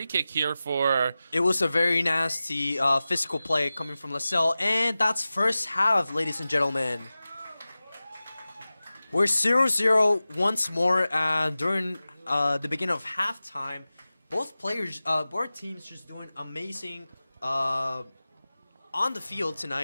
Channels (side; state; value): both; inverted; correlation -0.96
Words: kick here for... It was a very nasty physical play coming from LaSalle, and that's first half, ladies and gentlemen. We're 0-0 once more during the beginning of halftime. Both teams just doing amazing on the field